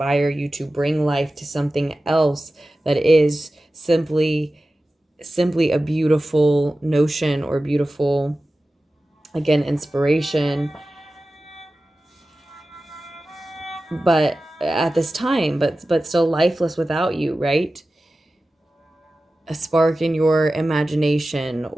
you to bring life to something else that is simply a beautiful notion or beautiful, again, inspiration, but at this time, but still lifeless without you, right? A spark in your imagination,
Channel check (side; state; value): both; normal; correlation 0.95